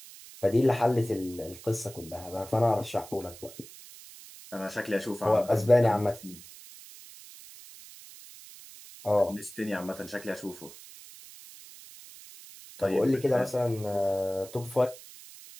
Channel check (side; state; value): right; noise; hiss, 18 dB below the sound